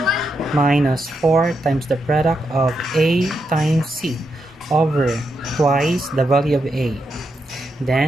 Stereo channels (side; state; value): both; normal; correlation 0.83